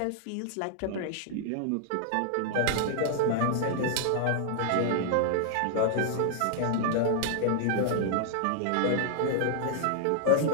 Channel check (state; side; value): different; both; correlation -0.01